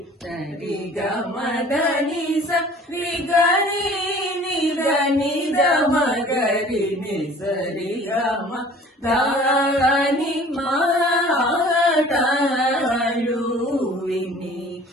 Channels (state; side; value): normal; both; correlation 0.48